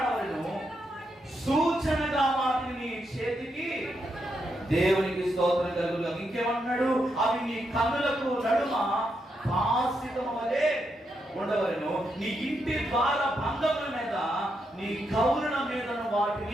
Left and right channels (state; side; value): normal; both; correlation 0.82